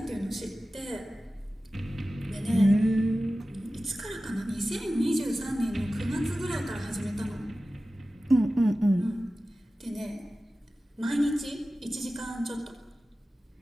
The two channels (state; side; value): normal; both; correlation 0.95